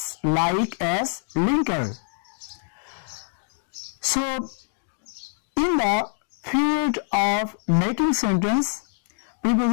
linker. So in the field of making sentence,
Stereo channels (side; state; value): right; silent; 62 dB below the other